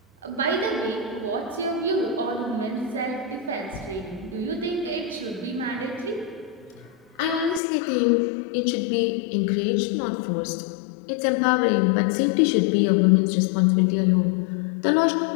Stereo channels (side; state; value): right; drops out; at 7.6 s